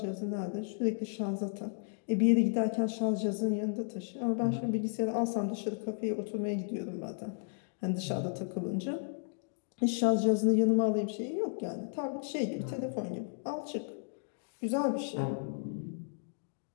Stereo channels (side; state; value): right; silent; digital silence